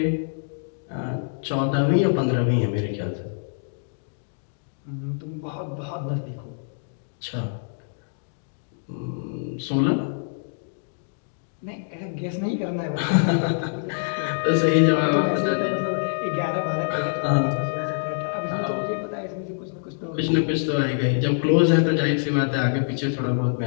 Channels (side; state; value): right; silent; digital silence